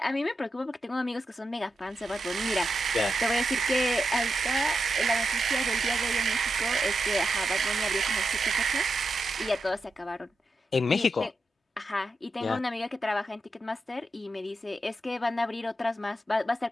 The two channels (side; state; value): both; normal; correlation 0.87